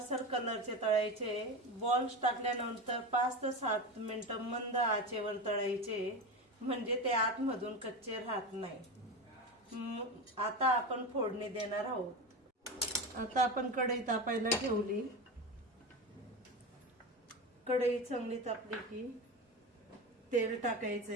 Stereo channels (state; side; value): normal; both; correlation 0.22